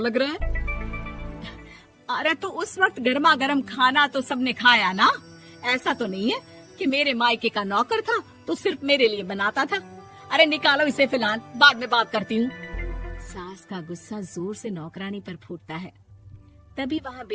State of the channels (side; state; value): both; identical; correlation 1.00